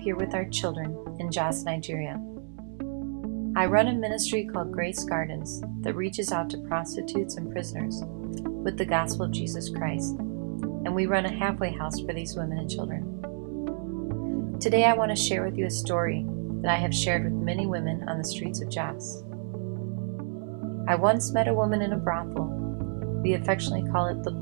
with our children in Jos, Nigeria. I run a ministry called Grace Gardens that reaches out to prostitutes and prisoners with the gospel of Jesus Christ, and we run a halfway house for these women and children. Today I want to share with you a story that I have shared with many women on the streets of Jos. I once met a woman in a brothel. We affectionately call it the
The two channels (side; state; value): left; silent; digital silence